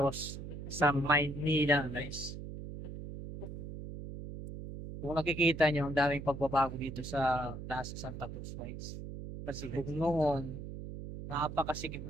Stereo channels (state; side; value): noise; right; hum, 9 dB below the sound